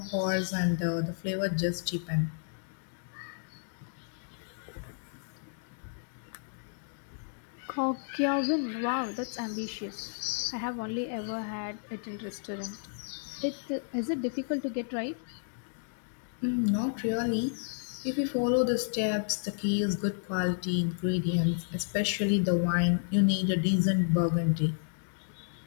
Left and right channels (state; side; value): silent; right; digital silence